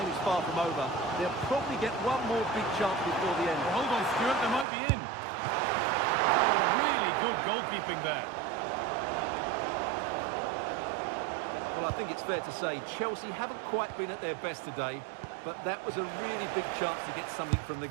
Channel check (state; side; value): drops out; left; at 4.7 s